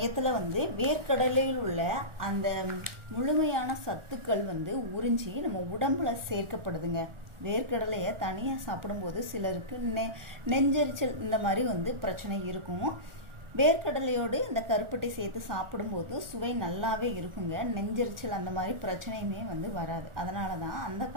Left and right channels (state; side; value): late; left; 1.4 ms